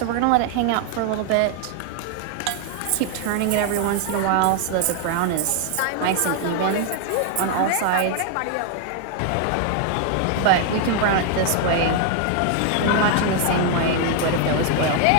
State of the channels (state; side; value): different; both; correlation 0.00